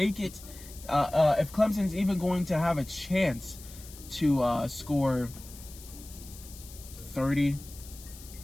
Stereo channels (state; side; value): noise; left; hiss, 17 dB below the sound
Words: it, if Clemson's even going to have a chance to score 30,